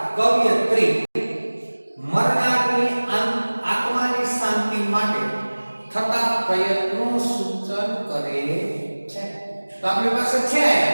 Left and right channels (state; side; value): inverted; both; correlation -1.00